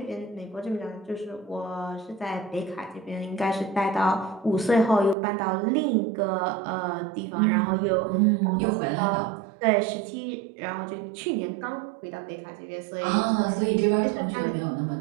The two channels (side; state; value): left; drops out; at 5.2 s